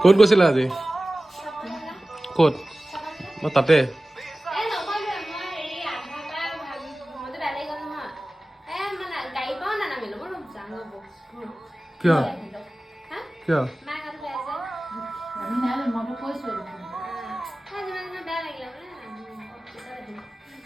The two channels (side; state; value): both; normal; correlation 0.97